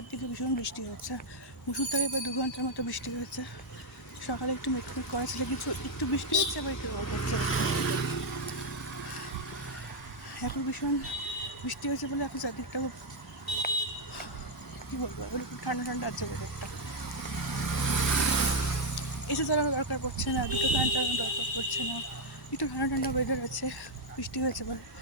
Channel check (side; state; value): both; normal; correlation -0.01